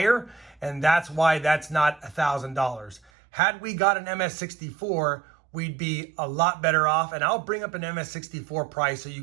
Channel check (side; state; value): left; drops out; at 3.1 s